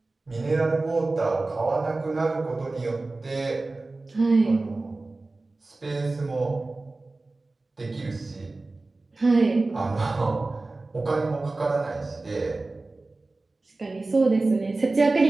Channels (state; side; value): quieter; left; 3.3 dB